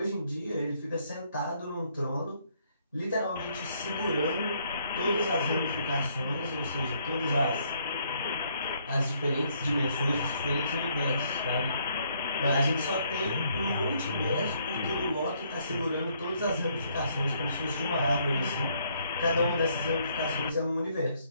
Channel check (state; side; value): inverted; both; correlation -0.69